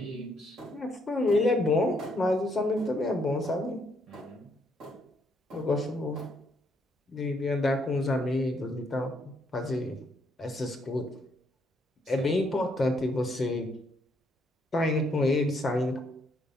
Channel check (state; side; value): normal; both; correlation 0.72